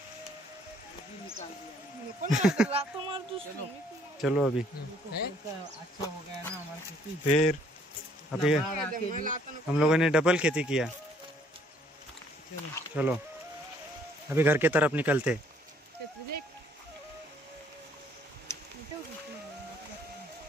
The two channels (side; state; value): both; normal; correlation 0.63